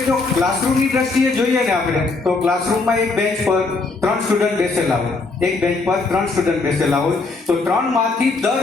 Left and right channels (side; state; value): right; quieter; 3.8 dB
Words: જો ક્લાસરૂમની દ્રષ્ટિએ જોઈએ ને આપણે, તો ક્લાસરૂમમાં એક બેન્ચ પર 3 સ્ટુડન્ટ બેસેલા હોય, એક બેન્ચ પર 3 સ્ટુડન્ટ બેસેલા હોય, તો 3 માંથી